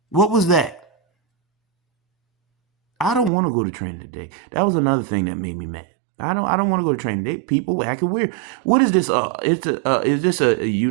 What was that? I don't want to go to training today. That was another thing that made me mad. I don't want to go to training today. People acting weird. What is this? Is this a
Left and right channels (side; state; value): left; drops out; at 3.3 s